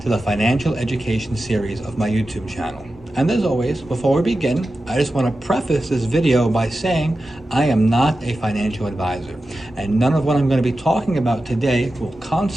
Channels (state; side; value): normal; both; correlation 0.92